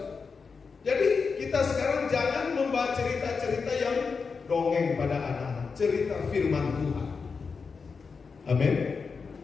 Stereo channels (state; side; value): quieter; right; 5.1 dB